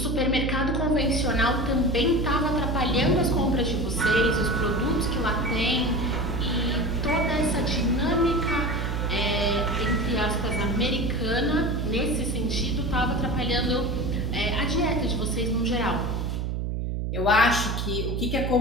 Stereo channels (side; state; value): right; noise; hum, 1 dB below the sound